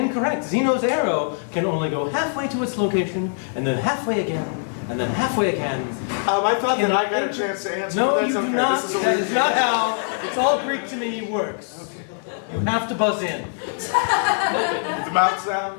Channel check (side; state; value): right; silent; digital silence